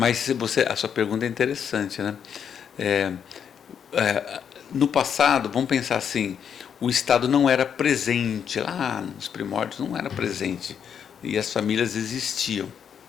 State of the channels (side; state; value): right; quieter; 7.9 dB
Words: a sua pergunta é interessante, né? No passado, vamos pensar assim, o Estado não era presente, lá nos primórdios não era presente, e as famílias existiam.